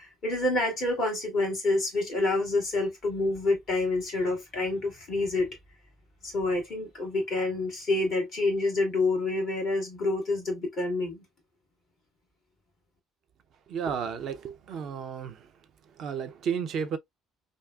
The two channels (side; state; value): both; normal; correlation 0.70